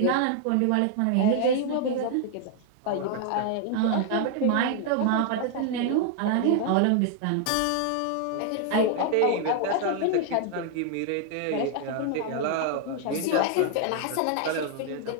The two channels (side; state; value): both; different; correlation 0.00